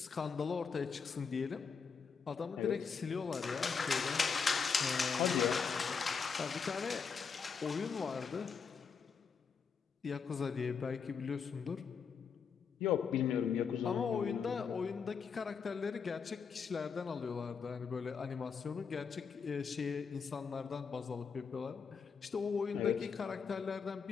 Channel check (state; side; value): quieter; right; 5.9 dB